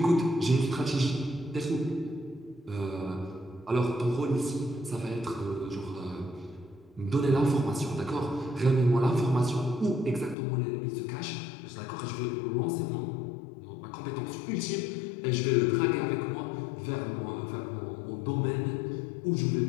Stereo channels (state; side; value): drops out; right; at 10.4 s